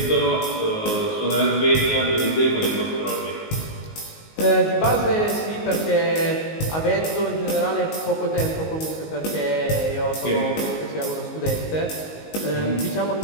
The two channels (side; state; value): right; late; 19 ms